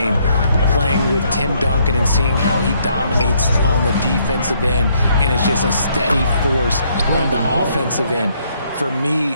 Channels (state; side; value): inverted; both; correlation -0.69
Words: Playing with Tim Duncan and seeing how he dominates on the defensive end and is just a steady force on the offensive end. For me,